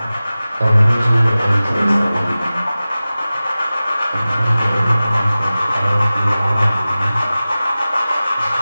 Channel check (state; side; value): inverted; both; correlation -0.96